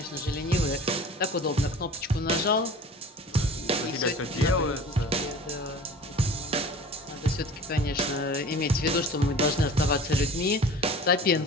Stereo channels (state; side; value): normal; both; correlation 0.42